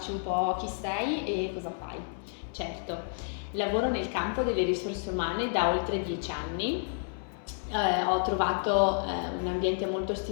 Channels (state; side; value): silent; right; 58 dB below the other